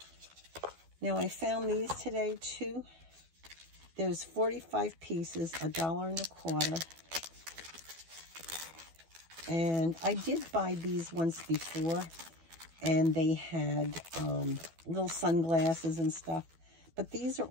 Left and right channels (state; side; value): late; left; 12 ms